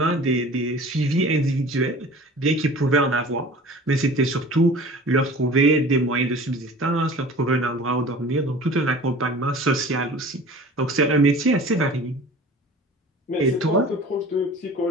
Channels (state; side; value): normal; both; correlation 0.42